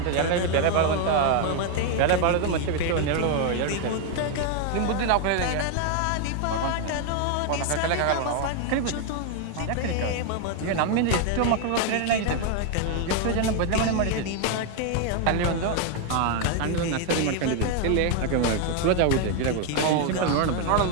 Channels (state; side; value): different; both; correlation 0.01